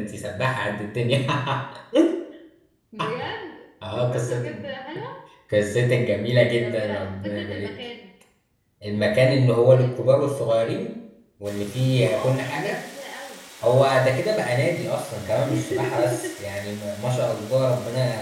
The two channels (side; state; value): both; identical; correlation 1.00